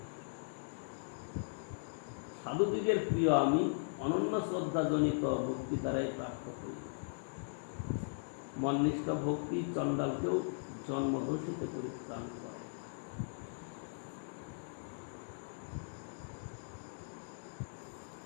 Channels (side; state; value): right; silent; digital silence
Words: সাধুদিগের প্রিয় আমি, অনন্য শ্রদ্ধাজনিত ভক্তি দ্বারাই প্রাপ্ত হই। মননিষ্ঠ ভক্তি চণ্ডালকেও জন্মদোষিতে পরিত্রাণ করে।